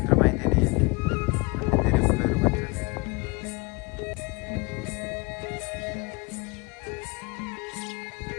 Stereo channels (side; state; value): right; quieter; 26.7 dB